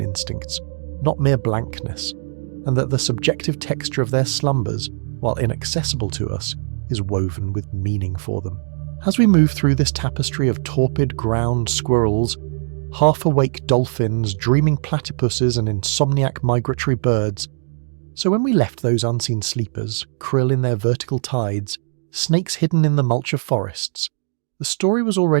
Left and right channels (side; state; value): left; silent; digital silence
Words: instincts, not mere blankness, and that the subjective texture of their slumbers, while inaccessible to us, is woven with meaning for them. As we move through this tapestry of torpid ground squirrels, half-awake dolphins, dreaming platypuses and insomniac migratory birds, so when we left those unseen sleepers, krill in their vertical tides, snakes hidden in the mulch of forests, the story was